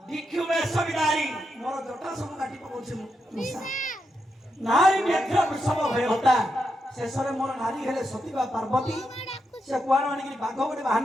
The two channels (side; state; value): both; normal; correlation 0.84